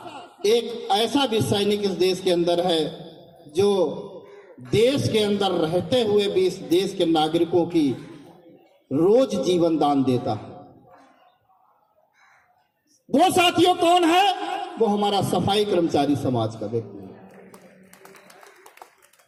एक ऐसा भी सैनिक इस देश के अंदर है जो देश के अंदर रहते हुए भी इस देश के नागरिकों की रोज जीवन दान देता है। वो साथियों कौन है? वो हमारा सफाई कर्मचारी समाज का व्यक्ति है,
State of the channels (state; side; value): identical; both; correlation 1.00